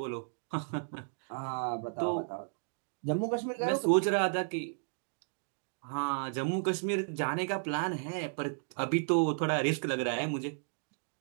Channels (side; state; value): left; silent; digital silence